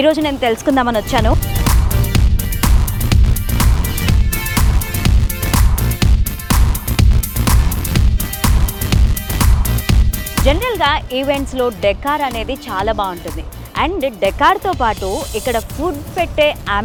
ఈరోజు నేను తెలుసుకుందామని వచ్చాను. జనరల్గా ఈవెంట్స్లో డెకార్ అనేది చాలా బాగుంటుంది. అండ్ డెకార్తో పాటు ఇక్కడ ఫుడ్ పెట్టే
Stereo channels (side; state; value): both; identical; correlation 1.00